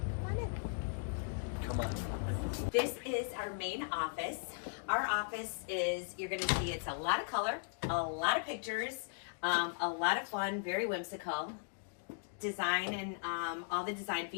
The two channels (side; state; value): right; silent; digital silence